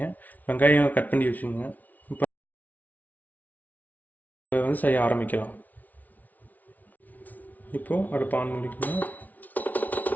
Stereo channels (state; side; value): late; right; 0.077 ms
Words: வெங்காயம் கட் பண்ணி வச்சுக்கோங்க. இப்போ செய்ய ஆரம்பிக்கலாம். இப்போ அடுப்பு ஆன் பண்ணிக்கணும்.